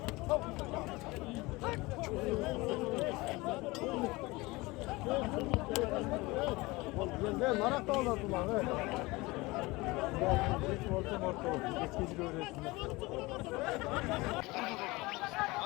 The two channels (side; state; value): right; quieter; 22.4 dB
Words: Ben marak da olardım lan. Evet. Hiç orta. Eskeci öğretsinler.